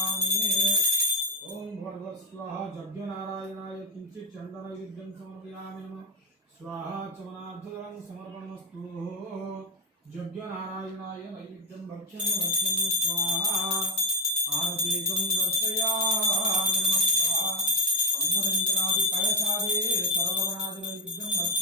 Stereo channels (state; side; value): normal; both; correlation 0.01